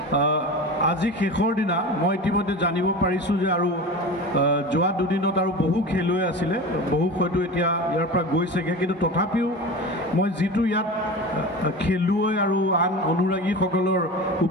আজি শেষৰ দিনা মই ইতিমধ্যে জানিব পাৰিছোঁ যে আৰু যোৱা দুদিনত আৰু বহু খেলুৱৈ আছিলে, বহু হয়তো এতিয়া ইয়াৰ পৰা গৈছেগৈ, কিন্তু তথাপিও মই যিটো ইয়াত খেলুৱৈ আৰু আন অনুৰাগীসকলৰ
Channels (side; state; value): both; normal; correlation 0.31